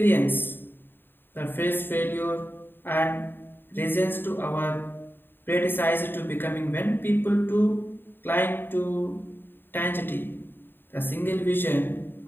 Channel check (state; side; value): late; right; 0.097 ms